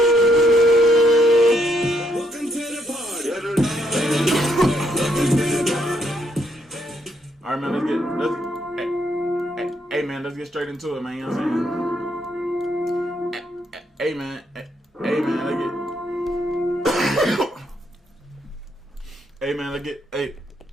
Welcome to the party. Welcome to the party. All right, man. Hey, man. Let's get straight into it, man. You know what I'm saying? Hey, man. Hey, man.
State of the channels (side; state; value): both; normal; correlation 0.73